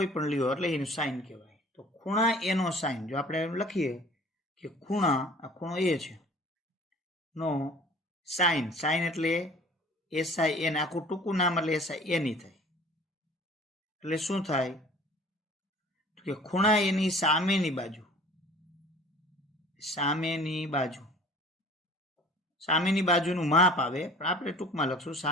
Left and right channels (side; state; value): both; normal; correlation 0.47